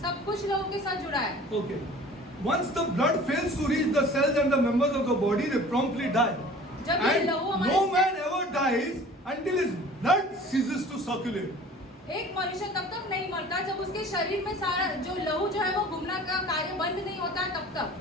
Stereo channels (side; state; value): both; normal; correlation 0.45